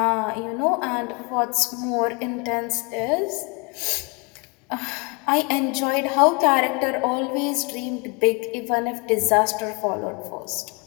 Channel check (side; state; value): right; quieter; 30.9 dB